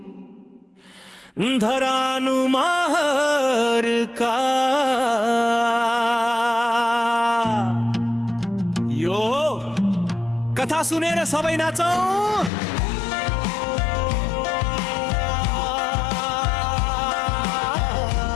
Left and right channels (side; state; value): right; drops out; at 12.5 s